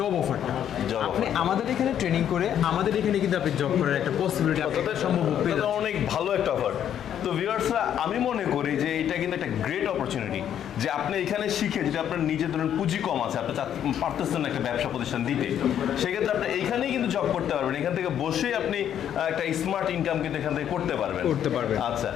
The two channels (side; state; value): right; quieter; 9.8 dB